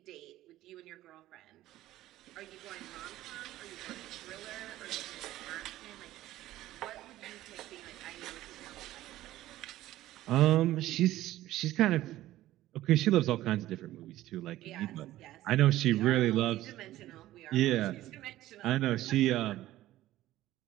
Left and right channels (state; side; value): quieter; left; 15.1 dB